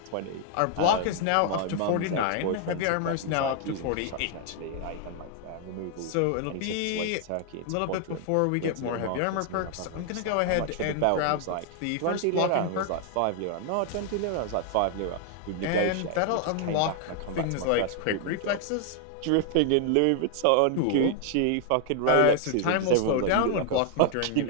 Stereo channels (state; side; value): different; both; correlation 0.00